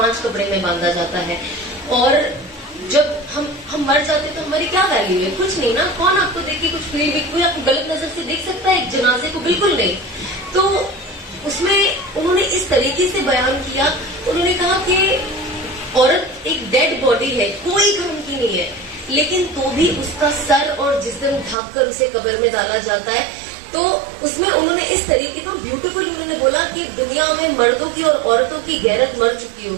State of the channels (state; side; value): drops out; left; at 21.6 s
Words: कपड़े में बांधा जाता है। और जब हम मर जाते तो हमारी क्या वैल्यू है? कुछ नहीं ना। कौन आपको देख के कुछ फील भी, कोई आपको गलत नजर से देख सकता है एक जनाजे को? बिल्कुल नहीं। तो उसमें उन्होंने इस तरीके से बयान किया, उन्होंने कहा कि औरत एक डेड बॉडी है, कोई काम की नहीं है, लेकिन तो भी उसका सर और जिस्म ढक कर उसे कब्र में डाला जाता है। तो उसमें उन्होंने इस तरीके का ब्यूटीफुल उन्होंने बोला कि दुनिया में मर्दों की और औरतों की गैरत मर चुकी